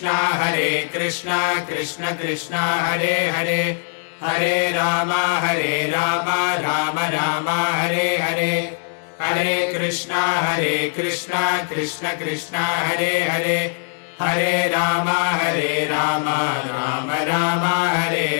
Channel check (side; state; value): right; silent; 65 dB below the other